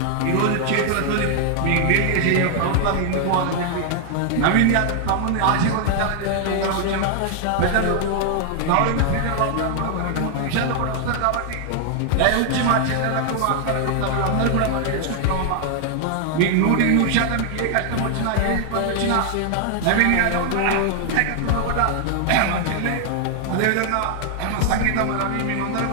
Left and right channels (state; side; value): different; both; correlation 0.00